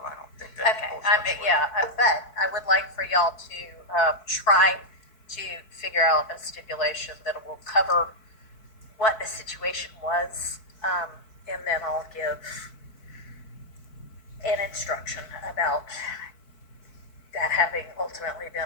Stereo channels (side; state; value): right; late; 4.6 ms